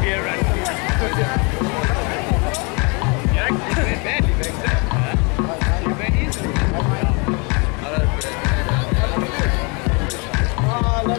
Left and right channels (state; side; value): quieter; right; 32.0 dB